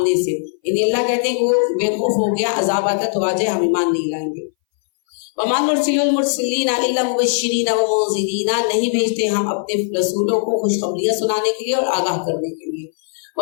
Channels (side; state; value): right; silent; 61 dB below the other